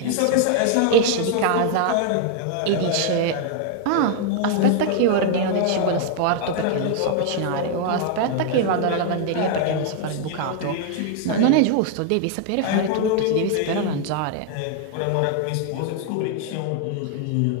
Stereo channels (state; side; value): different; both; correlation 0.00